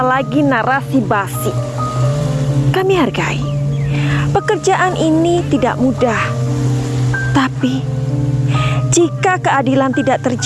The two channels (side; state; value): both; identical; correlation 1.00